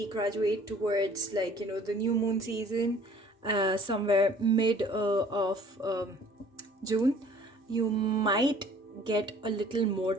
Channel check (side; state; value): both; normal; correlation 0.53